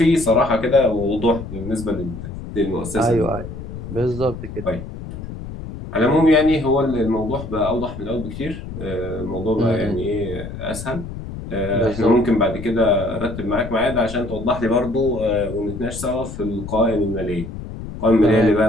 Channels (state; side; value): noise; left; rumble, 10 dB below the sound